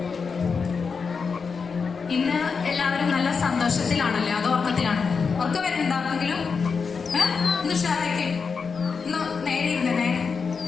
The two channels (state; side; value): quieter; right; 5.4 dB